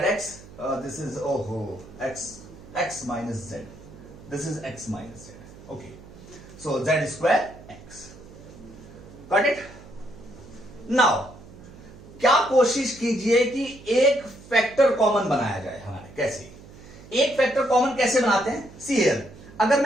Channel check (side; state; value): right; noise; hum, 19 dB below the sound